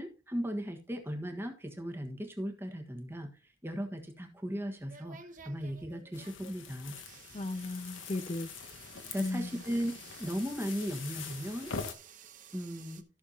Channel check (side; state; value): both; normal; correlation 0.85